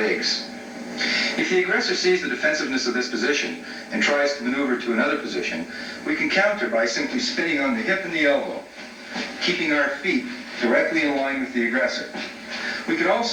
If the aggressor sees the defensiveness of this position and tries to maneuver to another position, we can counter by simply spinning on the hip and the elbow, keeping our feet directly in line with the aggressor. We can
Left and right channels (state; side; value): identical; both; correlation 1.00